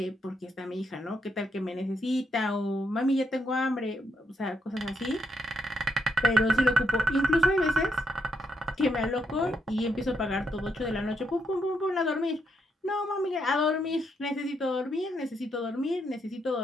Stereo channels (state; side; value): normal; both; correlation 0.78